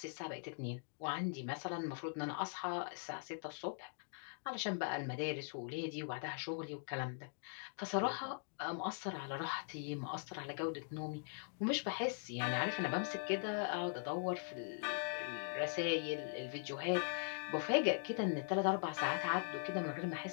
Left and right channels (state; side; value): silent; right; digital silence